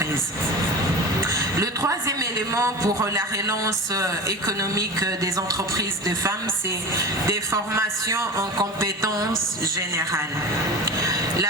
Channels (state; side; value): normal; both; correlation 0.30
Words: Le troisième élément pour la relance économique des entreprises de femmes, c'est des formations en compétences générales.